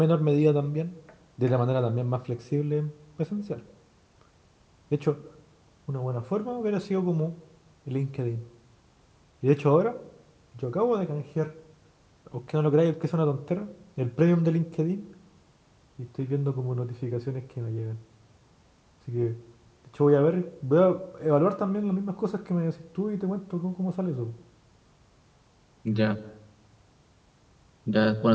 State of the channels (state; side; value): identical; both; correlation 1.00